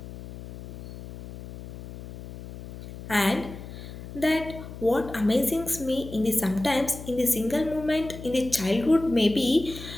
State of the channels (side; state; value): left; noise; hum, 12 dB below the sound